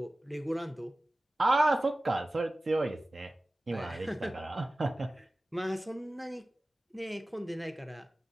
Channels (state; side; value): normal; both; correlation 0.96